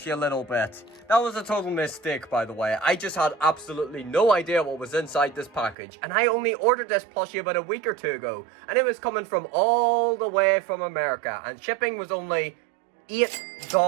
a little bit. That was a total mistake, by the way. I just had absolutely no idea what was inside this package. And I only ordered this plushie about a week or two ago. And it was coming from all the way from America. And shipping was only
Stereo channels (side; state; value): left; drops out; at 5.8 s